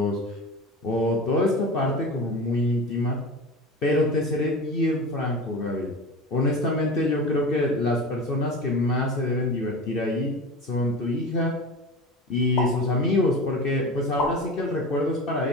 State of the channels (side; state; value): both; normal; correlation 0.30